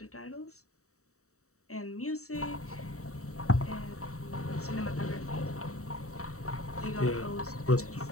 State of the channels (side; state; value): right; late; 0.64 ms